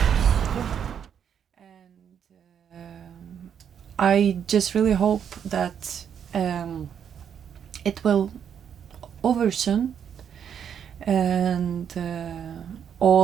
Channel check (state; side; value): quieter; left; 8.3 dB